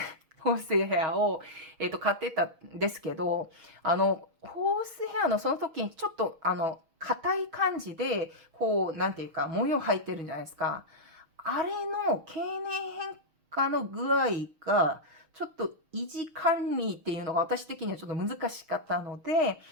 ホースヘアを、買ってたんですけど、ホースヘアのその時にちょっと、硬い感じで、こう、なんていうか、模様入ってるんじゃないですか。あれの経年変化の具合が、ちょっと維持管理っていうのが私的にはちょっと難しかったので、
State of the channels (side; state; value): left; late; 6.4 ms